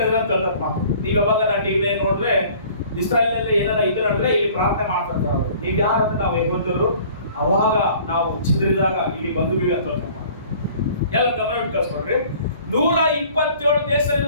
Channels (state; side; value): inverted; both; correlation -0.51